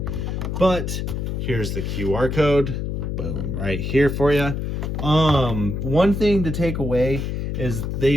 but here's the QR code. Boom, right here for you. One thing to take away is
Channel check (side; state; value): left; noise; hum, 2 dB below the sound